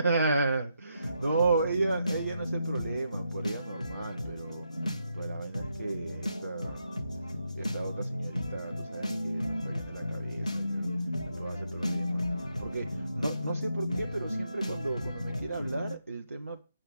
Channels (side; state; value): both; inverted; correlation -0.82